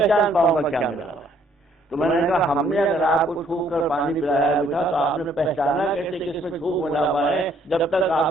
پاؤں گا کیا ملا ہوا ہے. تو میں نے کہا ہم نے اگر آپ کو چھو کر پانی پلایا بھی تھا تو آپ نے پہچانا کیسے کہ اس میں چھو ملا ہوا ہے جب تک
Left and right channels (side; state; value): both; normal; correlation 0.65